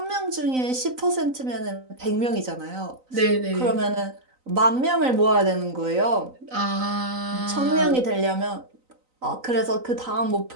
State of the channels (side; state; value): left; late; 3.9 ms